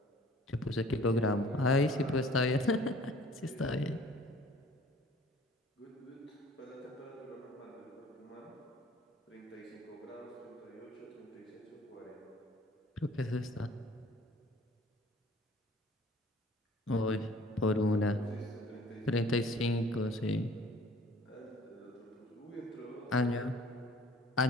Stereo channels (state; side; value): normal; both; correlation 0.51